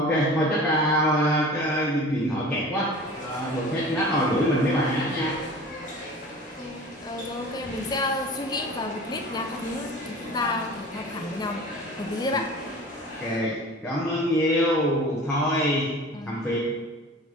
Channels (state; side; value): normal; both; correlation 0.40